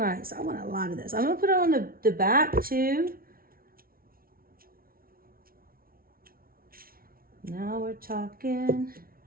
so I want a lot of this. I'm gonna put it on the back too. Now we're talking.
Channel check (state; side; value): late; left; 0.43 ms